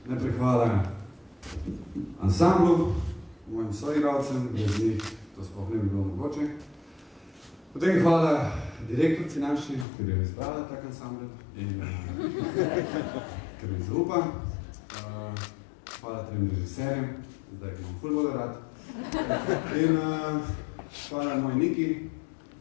Najprej hvala ansamblu, mojim soigralcem, brez njih to sploh ne bi bilo mogoče. Potem hvala direktorci naši, ker je izbrala tak ansambl in ker mi zaupa. Hvala trem režiserjem, zdaj imam ful bolj rad. In hvala moji Niki,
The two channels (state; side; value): drops out; right; at 9.9 s